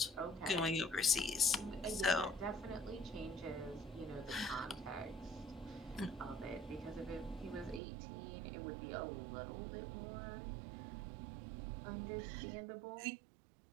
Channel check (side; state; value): left; drops out; at 7.8 s